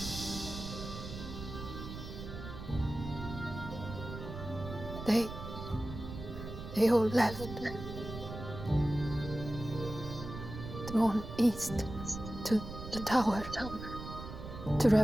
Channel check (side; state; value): right; noise; rumble, 9 dB below the sound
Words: They all left. Drawn east to the tower. To